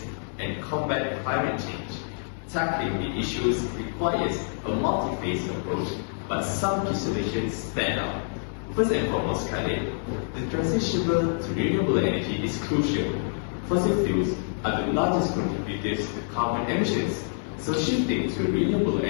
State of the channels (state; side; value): silent; right; 60 dB below the other